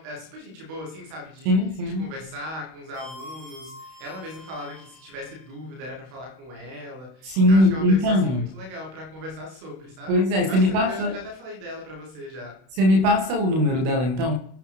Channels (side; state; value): left; late; 31 ms